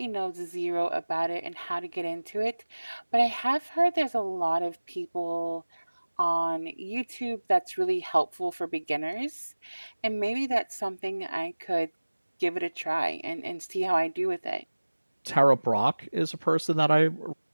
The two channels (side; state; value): both; inverted; correlation -1.00